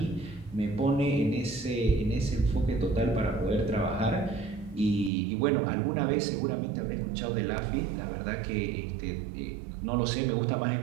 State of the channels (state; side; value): drops out; left; at 5.1 s